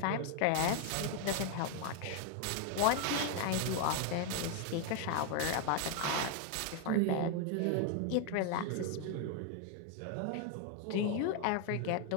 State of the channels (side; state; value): both; different; correlation 0.00